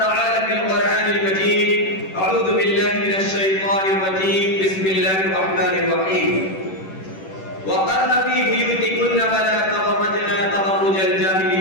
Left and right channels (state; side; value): late; right; 10 ms